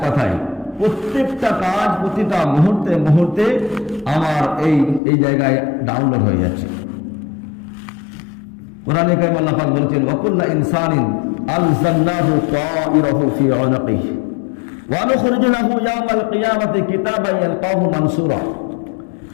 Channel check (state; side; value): drops out; right; at 5.0 s